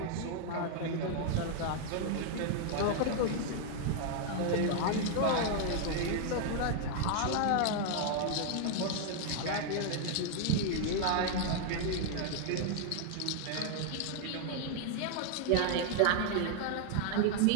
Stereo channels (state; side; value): different; both; correlation 0.00